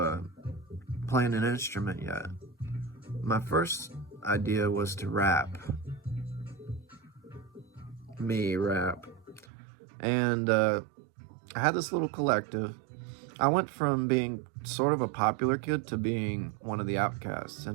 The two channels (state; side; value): drops out; left; at 9.5 s